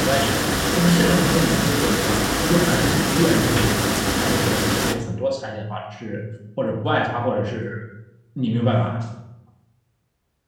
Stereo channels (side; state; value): both; identical; correlation 1.00